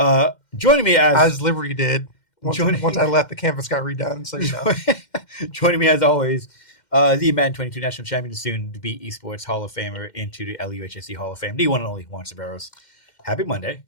Joining me as Liberty did. Once I left, the campus got redone. So you know. Joining me as always, the Madden 22 national champion, soon to be esports Hall of Famer into the LUHSC Hall of Fame, the one and only Juan Ceballos. Happy Monday.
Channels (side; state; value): right; late; 2.1 ms